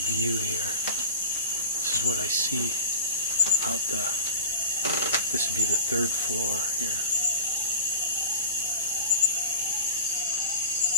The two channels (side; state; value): both; inverted; correlation -0.35